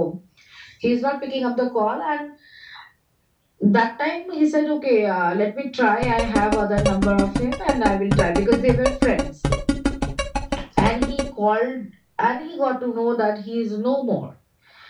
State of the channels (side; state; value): both; identical; correlation 1.00